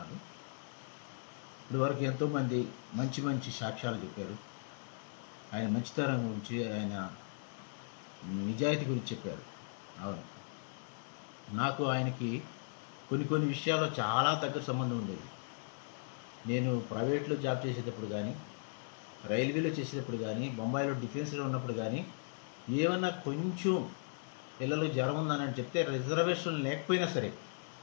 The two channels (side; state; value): right; silent; 53 dB below the other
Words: ఇప్పుడు వరకు ఎంతోమంది మంచి మంచి సాక్ష్యాలు చెప్పారు. ఆయన మంచితనం గురించి, ఆయన నిజాయితీ గురించి చెప్పారు. అవును, నాకు ఆయనకి కొన్ని విషయాల్లో చాలా దగ్గర సంబంధం ఉండేది. నేను ప్రైవేట్లో జాబ్ చేసేటప్పుడు కానీ, రైల్వేలో చేసేటప్పుడు కానీ, బొంబాయిలో డిఫెన్స్లో ఉన్నప్పుడు కానీ, ఏమన్నా కొంచెం పిల్లలు జ్వరం ఉందని చెప్తే రిజర్వేషన్ లేకపోయినా సరే,